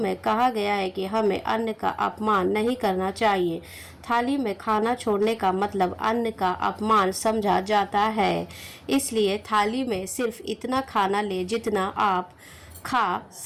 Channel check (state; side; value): identical; both; correlation 1.00